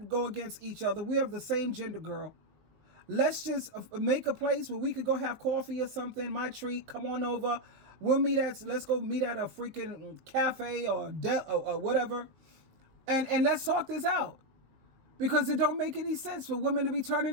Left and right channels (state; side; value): late; left; 19 ms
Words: go against each other. We have the same gender, girl. Let's just make a place where we could go have coffee or something. My treat. Come on over. Let's go meet at a freaking cafe or whatever. And let's talk this out. Because it don't make any sense for women to be